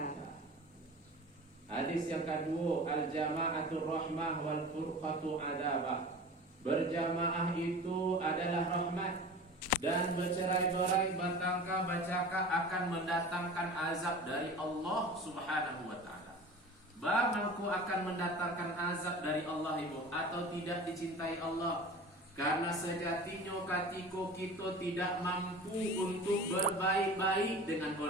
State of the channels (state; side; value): normal; both; correlation 0.37